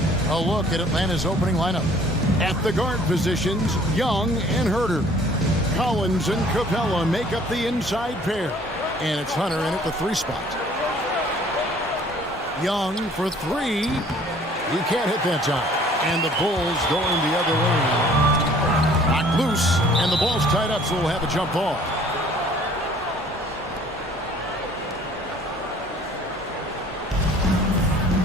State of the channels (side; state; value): both; normal; correlation 0.55